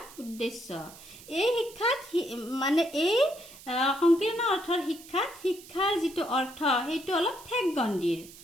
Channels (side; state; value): right; noise; hiss, 19 dB below the sound